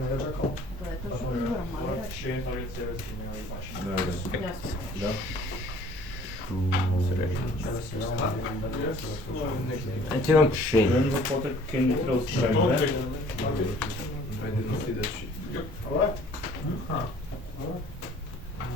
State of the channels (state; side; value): normal; both; correlation 0.53